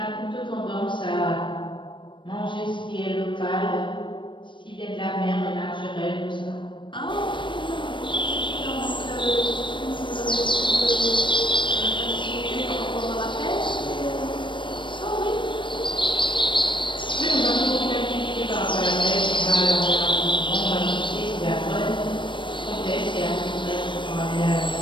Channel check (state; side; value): late; right; 0.23 ms